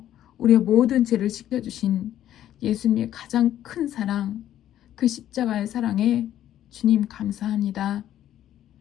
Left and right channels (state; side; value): quieter; right; 11.8 dB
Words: 우리의 모든 죄를 씻겨주신 예수님의 가장 큰 사랑, 그 십자가의 사랑에 주님 감사합니다.